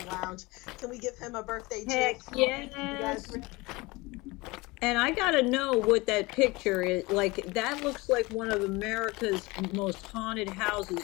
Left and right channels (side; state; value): right; quieter; 23.2 dB